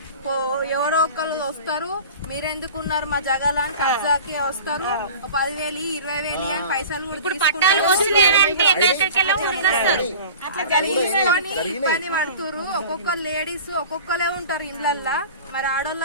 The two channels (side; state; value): both; inverted; correlation -0.39